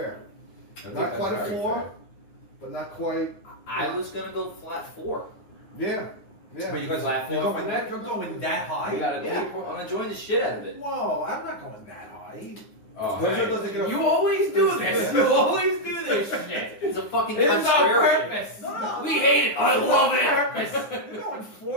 I think Not that's quite a very 4, fair. but not quite. I was gonna go flat 4. Yeah. Yeah. But you guys Flat you're four going for that? You're going that We high? got a Yeah, 3.0. I'm enjoying the shit out of it. Whoa, I'm not going that high. Oh, Those man. doesn't get a- You always do this. You always do this shit. It's a fucking This is on contrarian. purpose. No. We hate it. I love it. You're going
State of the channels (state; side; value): late; right; 9.6 ms